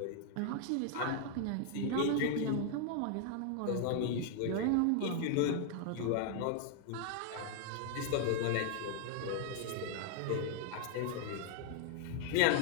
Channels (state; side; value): different; both; correlation 0.00